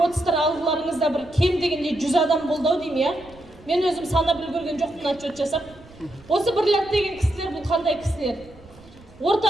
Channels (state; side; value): noise; right; rumble, 23 dB below the sound